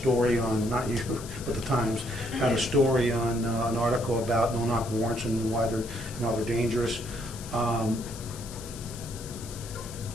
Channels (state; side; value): noise; left; hiss, 14 dB below the sound